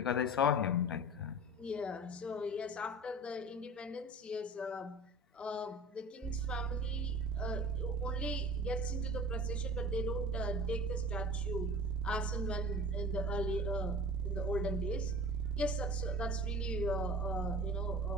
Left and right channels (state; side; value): normal; both; correlation 0.38